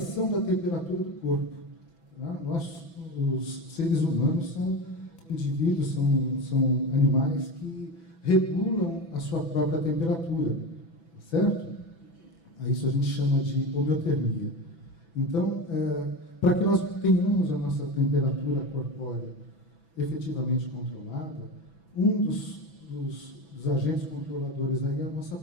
da temperatura do corpo. Tá? Nós, os seres humanos, são indivíduos, são animais que regulam a sua própria temperatura, certo? Isso a gente chama de homeotermia. Então, para que nós tenhamos a nossa temperatura corpórea efetivamente controlada, um dos agentes controladores aí é a nossa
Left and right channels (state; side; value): late; right; 6.0 ms